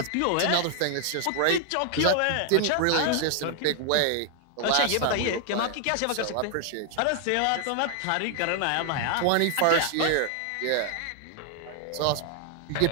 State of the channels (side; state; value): both; different; correlation 0.00